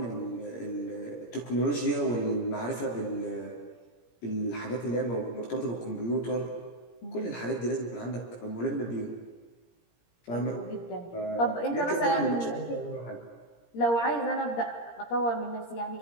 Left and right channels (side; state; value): right; late; 17 ms